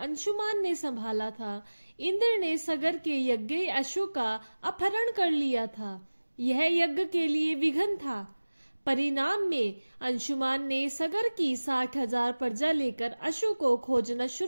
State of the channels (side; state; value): both; inverted; correlation -1.00